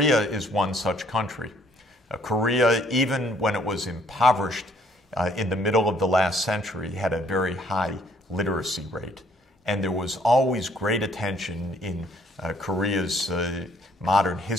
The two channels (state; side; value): normal; both; correlation 0.63